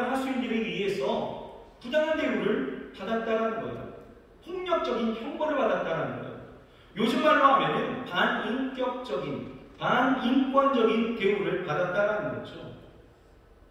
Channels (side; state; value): both; identical; correlation 1.00